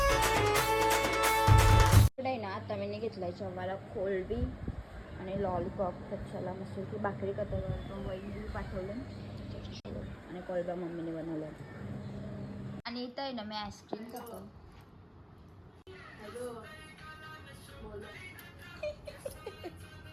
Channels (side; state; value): both; identical; correlation 1.00